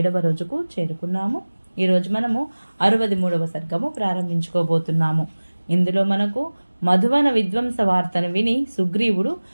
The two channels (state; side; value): inverted; both; correlation -1.00